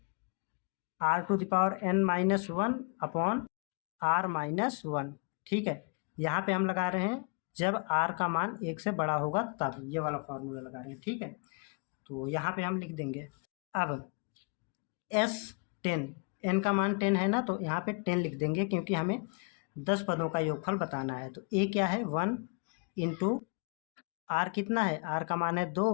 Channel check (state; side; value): quieter; right; 35.4 dB